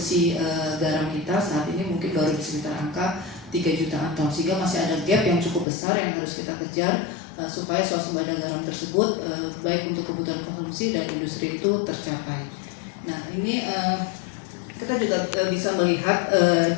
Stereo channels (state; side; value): drops out; right; at 5.7 s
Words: garam kita saat ini mungkin baru di sekitar angka 3 jutaan ton, sehingga masih ada gap yang cukup besar yang harus kita kejar supaya swasembada garam tersebut baik untuk kebutuhan konsumsi dan industri itu tercapai. Nah, ini kita juga bisa melihat